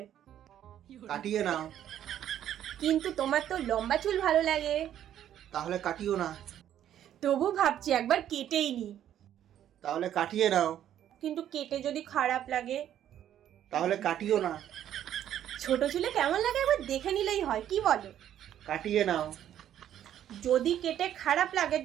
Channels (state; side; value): quieter; left; 10.9 dB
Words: কাটিয়ে নাও। কিন্তু তোমার তো লম্বা চুল ভালো লাগে। তাহলে কাটিও না। তবু ভাবছি একবার কেটেই নি। তাহলে কাটিয়ে নাও। কিন্তু কেটে যদি খারাপ লাগে? তাহলে কাটিও না। ছোট চুলে কেমন লাগে একবার দেখে নিলেই হয়, কি বলো? কাটিয়ে নাও। যদি কেটে খারাপ লাগে